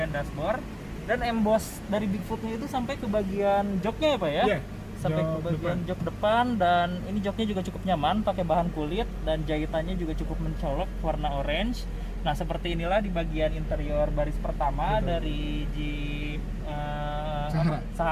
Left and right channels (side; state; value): both; identical; correlation 1.00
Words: dashboard dan emboss dari Bigfootnya itu sampai ke bagian joknya ya, Pak ya? Iya. Sampai ke Jok bagian depan. jok depan dan ini joknya juga cukup nyaman pakai bahan kulit dan jahitannya juga cukup mencolok warna orange. Nah, seperti inilah di bagian interior baris pertama Betul. dari Jeep Sahara.